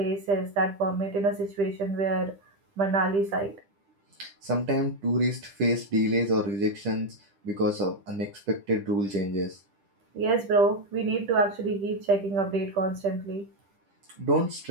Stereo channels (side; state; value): left; late; 10 ms